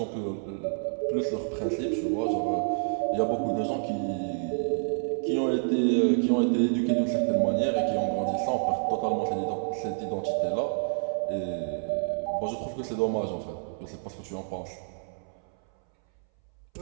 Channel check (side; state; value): left; silent; 59 dB below the other